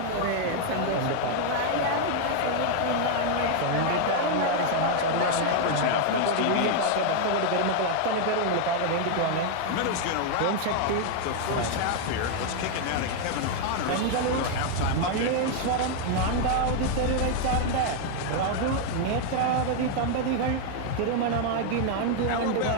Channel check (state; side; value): different; both; correlation 0.00